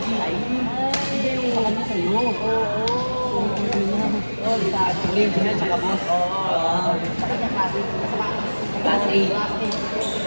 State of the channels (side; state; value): both; inverted; correlation -1.00